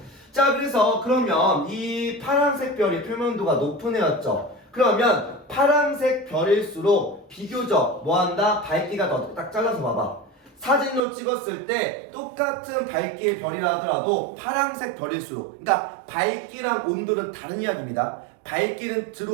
자 그래서 그러면 이 파란색 별이 표면도가 높은 애였죠. 그러면 파란색 별일수록 비교적 뭐한다? 밝기가 더 딱 잘라서 봐봐. 사진으로 찍었을 때 똑같은 밝기의 별이라 하더라도 파란색 별일수록 그러니까 밝기랑 온도는 다른 이야기입니다. 밝기는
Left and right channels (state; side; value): drops out; left; at 11.0 s